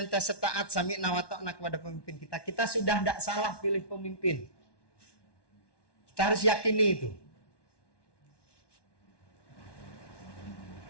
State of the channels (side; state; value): right; late; 1.1 ms